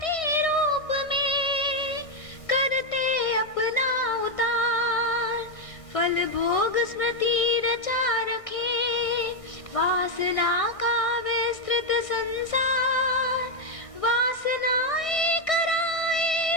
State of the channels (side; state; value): right; late; 1.6 ms